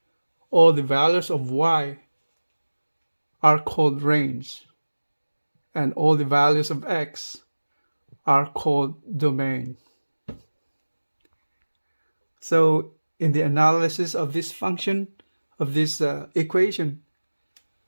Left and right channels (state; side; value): inverted; both; correlation -1.00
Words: all the values of y are called range, and all the values of x are called domain. So in the analysis of this function, of this equation,